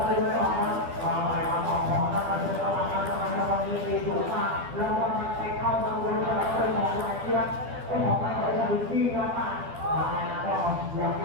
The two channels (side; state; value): left; late; 12 ms